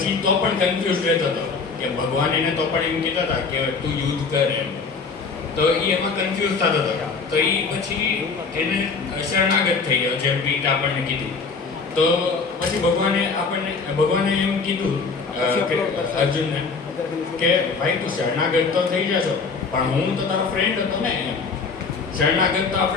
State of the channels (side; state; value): right; quieter; 4.8 dB